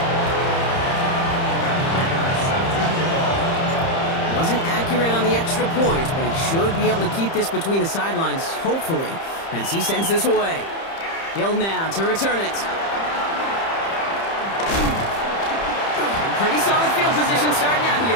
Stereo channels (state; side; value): late; right; 30 ms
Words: Wasn't accurate on the extra point, but he should be able to keep this between the sidelines, hopefully, as he sends this away. Hill now to return it. Pretty solid field position starting out here,